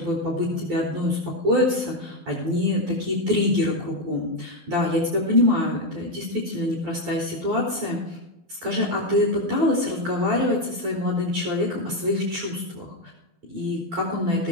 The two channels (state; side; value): late; left; 12 ms